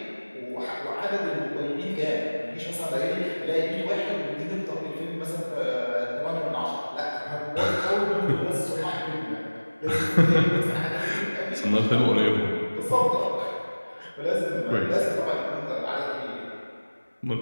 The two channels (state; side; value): inverted; both; correlation -1.00